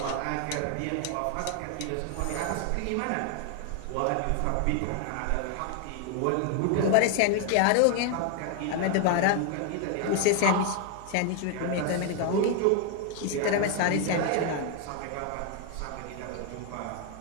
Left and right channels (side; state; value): both; different; correlation 0.00